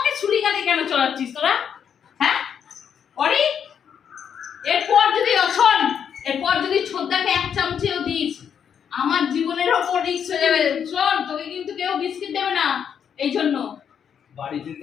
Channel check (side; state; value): right; quieter; 8.0 dB